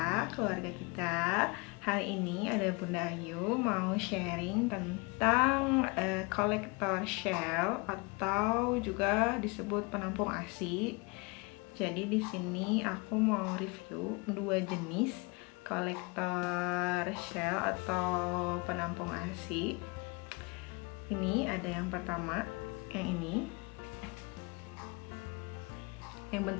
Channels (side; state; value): right; quieter; 28.8 dB